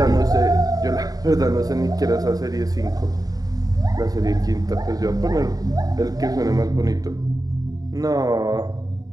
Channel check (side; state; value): left; late; 0.18 ms